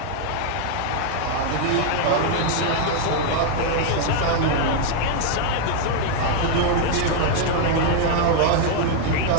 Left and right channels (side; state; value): both; different; correlation 0.00